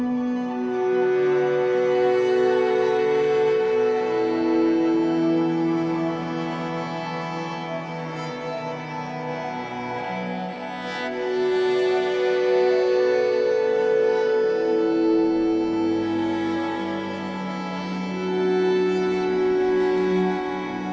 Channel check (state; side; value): identical; both; correlation 1.00